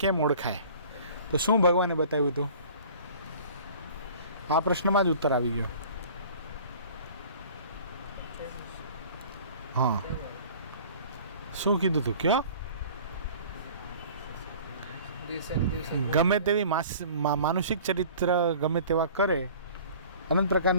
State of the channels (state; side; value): inverted; both; correlation -0.46